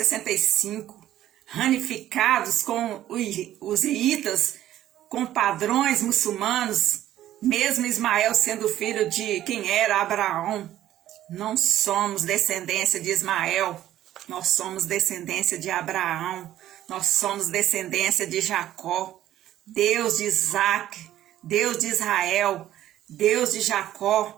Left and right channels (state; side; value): quieter; left; 12.9 dB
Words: ramificados com os iitas, com padrões muçulmanos, mesmo Ismael sendo filho de quem era Abraão. Não somos descendência de Ismael, nós somos descendência de Abraão, nós somos descendência de Jacó, Deus de Isaac, Deus de Israel, Deus de